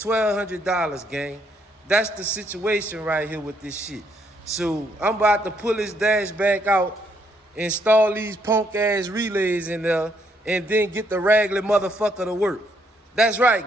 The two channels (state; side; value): normal; both; correlation 0.72